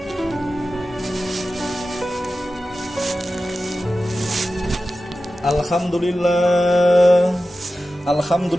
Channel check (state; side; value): normal; both; correlation 0.94